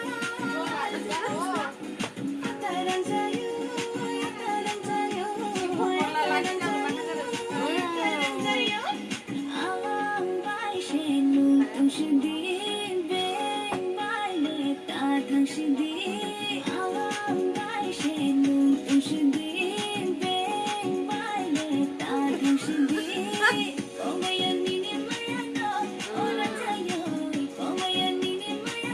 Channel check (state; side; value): identical; both; correlation 1.00